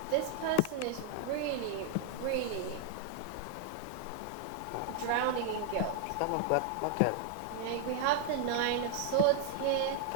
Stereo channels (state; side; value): different; both; correlation 0.00